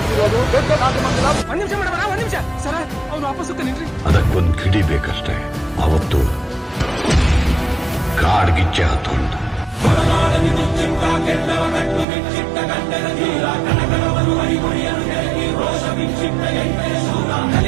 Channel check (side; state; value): left; drops out; at 12.1 s